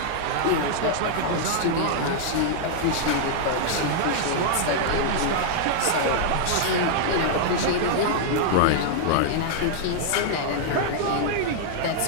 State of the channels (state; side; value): different; both; correlation -0.01